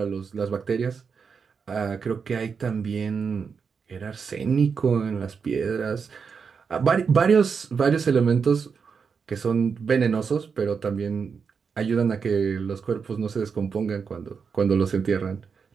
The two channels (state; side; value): quieter; left; 5.9 dB